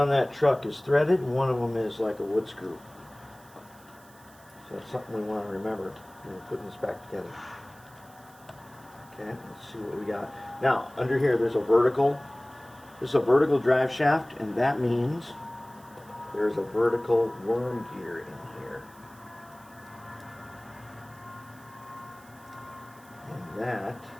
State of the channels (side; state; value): right; noise; hiss, 25 dB below the sound